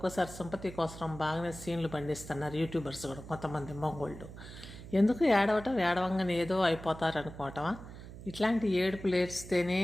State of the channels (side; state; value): right; noise; hum, 14 dB below the sound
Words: సింపతి కోసం బాగానే సీన్లు పండిస్తున్నారు యూట్యూబర్స్ కూడా, కొంతమంది మగోళ్ళు. ఎందుకు ఏడవంగానే ఏదో అయిపోతారు అనుకోవటమా? ఇట్లాంటి ఏడుపులు ఏడిస్తేనే